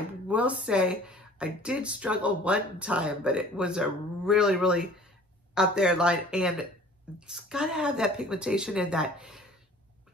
will say I did struggle one time, but it was a really, really out there line, and it's got to have that pigmentation and that,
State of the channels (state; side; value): normal; both; correlation 0.49